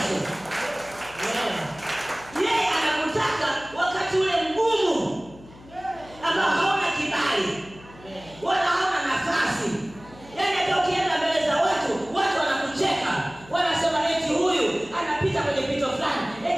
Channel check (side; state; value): left; noise; hum, 21 dB below the sound